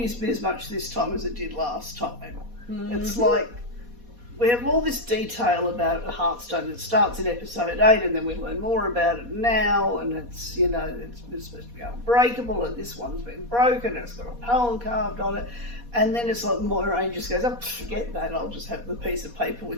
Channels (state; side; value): late; left; 4.2 ms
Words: me as much this time as it did last time. Mm-hmm. It's like we have all this detail about a Heartstone that starts in episode 8, and then we learn more about it now, and it's, you know, it's supposed to be unbreakable, and this one's been broken, and it's got a poem carved on it, and then it's like Moiraine just goes, oh, forget that, I'll just have the piece of paper